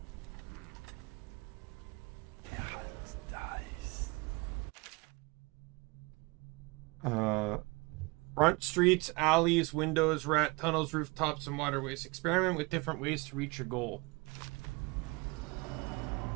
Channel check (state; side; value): quieter; left; 26.7 dB